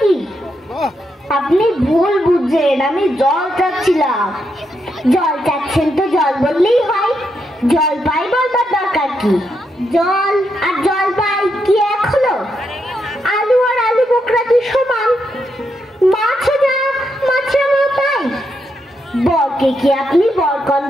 কি? আপনি ভুল বুঝছেন, আমি জল চাচ্ছিলাম। জল চাচ্ছেন তো জল বললেই হয়, জলপাই বলবার দরকার কি? জল আর জলপাই কি এক হলো? আলু আর আলু বোকরা কি সমান? মাছও যা, মাছও তাই। বরকে কি আপনি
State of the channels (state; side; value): normal; both; correlation 0.81